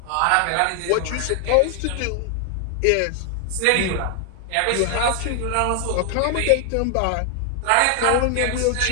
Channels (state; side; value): different; both; correlation 0.00